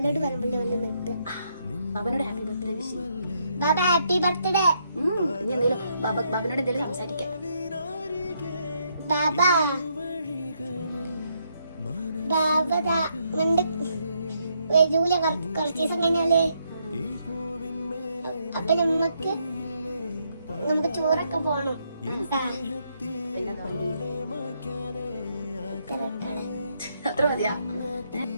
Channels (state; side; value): inverted; both; correlation -0.75